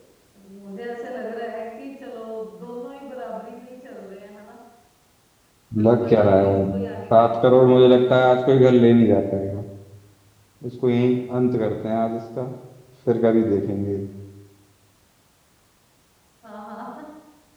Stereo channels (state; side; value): identical; both; correlation 1.00